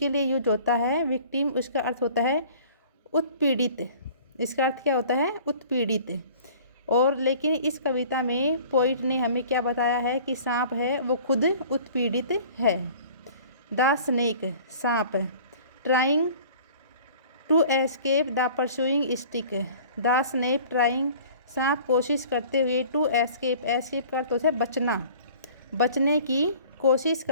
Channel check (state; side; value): inverted; both; correlation -0.48